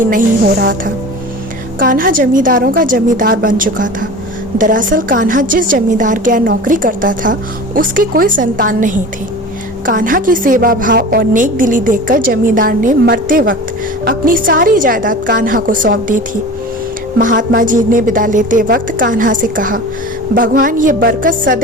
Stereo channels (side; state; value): both; normal; correlation 0.36